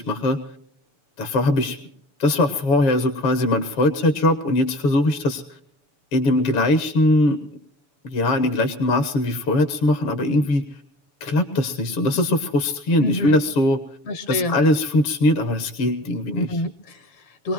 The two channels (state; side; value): late; right; 6.9 ms